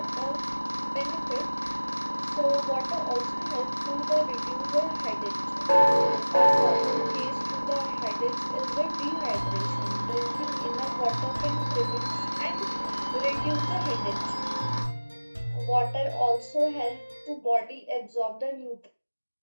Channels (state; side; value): inverted; both; correlation -1.00